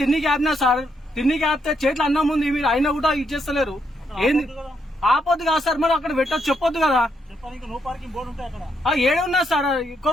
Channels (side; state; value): both; normal; correlation 0.77